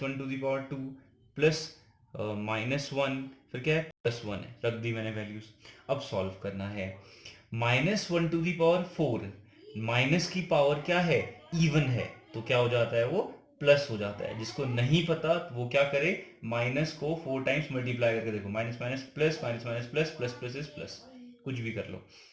to the power 2 plus -1, फिर क्या है, +1 है. रख दी मैंने वैल्यूज. अब सॉल्व करना है. -1 टू दी पावर 4, माइनस की पावर क्या है, इवन है, तो क्या हो जाता है, वो प्लस हो जाता है. जिसको नहीं पता वो क्या करे, माइनस को 4 टाइम्स मल्टीप्लाई करके देखो. Minus minus plus, minus minus plus, plus plus is plus, कुछ भी कर लो.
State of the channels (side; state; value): both; identical; correlation 1.00